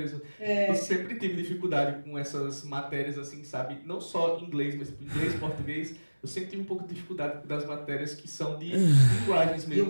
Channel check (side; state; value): both; inverted; correlation -1.00